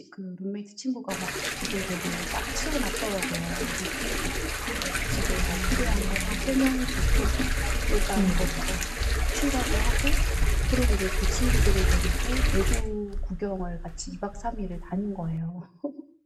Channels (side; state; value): both; identical; correlation 1.00